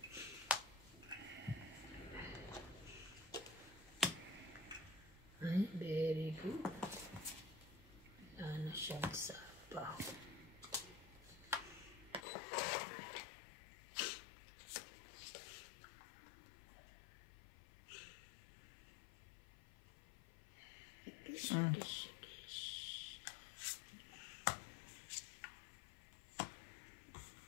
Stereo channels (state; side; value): drops out; right; at 12.2 s